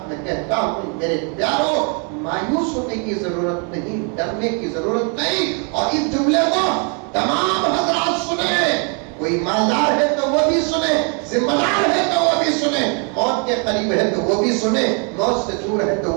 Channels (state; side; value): quieter; left; 38.2 dB